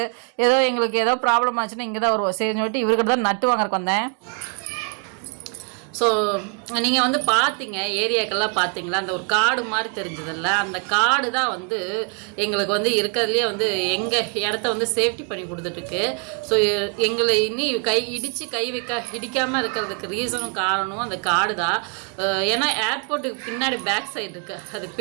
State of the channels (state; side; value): quieter; left; 37.8 dB